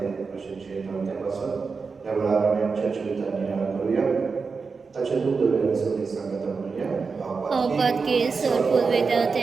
așa ce de pasă. Evaluarea mea ceea ce uitania căruia, tace nu dovește să ne sangătămânia, Apatke sorpul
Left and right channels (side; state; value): left; quieter; 4.8 dB